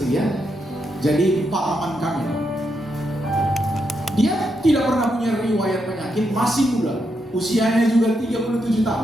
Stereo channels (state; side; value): normal; both; correlation 0.82